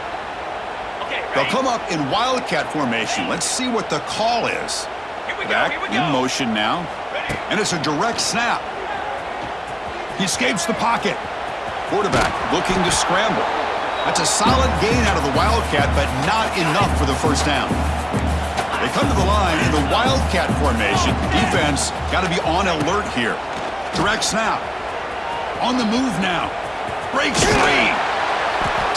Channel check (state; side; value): identical; both; correlation 1.00